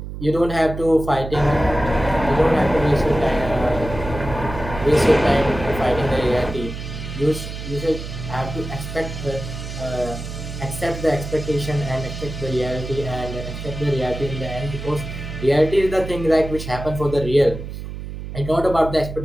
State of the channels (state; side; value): noise; right; hum, 9 dB below the sound